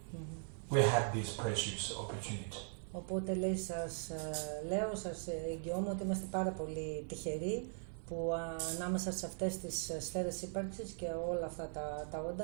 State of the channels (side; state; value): left; silent; 51 dB below the other